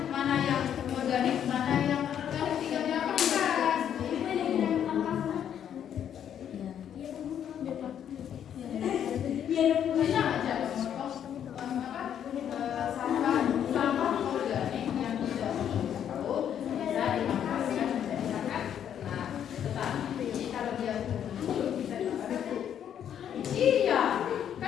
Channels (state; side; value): quieter; right; 9.4 dB